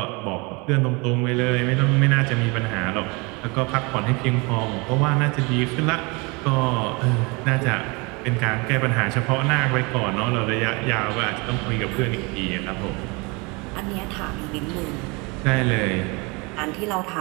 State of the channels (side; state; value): left; quieter; 28.1 dB